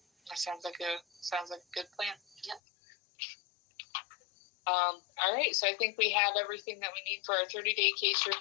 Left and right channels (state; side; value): drops out; right; at 2.6 s